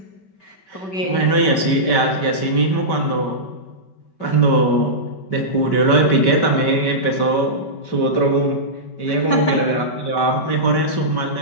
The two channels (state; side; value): late; right; 5.2 ms